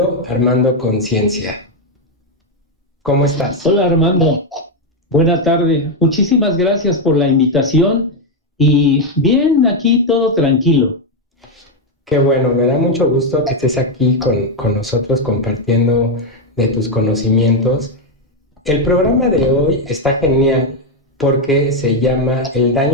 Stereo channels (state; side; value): normal; both; correlation 0.04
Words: a Armando Conciencia. ¿Cómo estás? Hola Armando, buena tarde. Muchísimas gracias por la invitación y bien, aquí todo tranquilo. Qué bueno, me da mucho gusto que estés aquí con nosotros compartiendo de tus conocimientos. El programa de hoy está genial porque se llama El